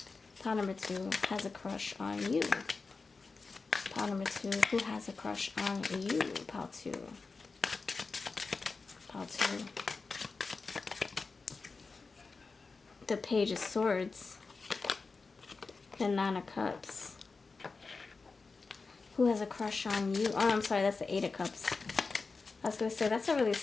pile number 2, has a crush on you? Pile number 2, who has a crush on you? Pile 2. Pile 2. The Page of Swords. The 9 of Cups. Who has a crush on you? Oh, I'm sorry, that's the 8 of Cups. I was going to say, that's a really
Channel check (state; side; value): quieter; right; 4.2 dB